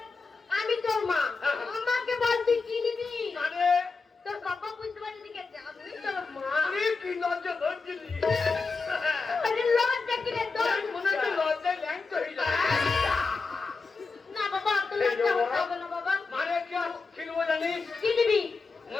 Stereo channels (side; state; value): right; quieter; 4.3 dB